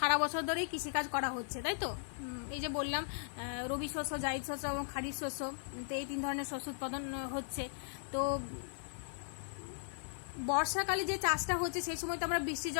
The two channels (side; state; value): right; silent; 53 dB below the other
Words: বছর ধরেই কৃষিকাজ করা হচ্ছে, তাই তো। এই যে বললাম রবি শস্য, জায়িদ শস্য এবং খারিফ শস্য, তো এই 3 ধরনের শস্য উৎপাদন হচ্ছে। তো বর্ষাকালে যে চাষটা হচ্ছে সেই সময় তো আমরা বৃষ্টি